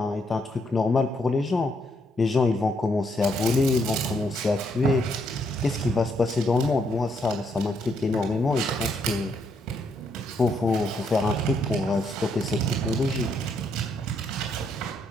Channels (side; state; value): both; normal; correlation 0.75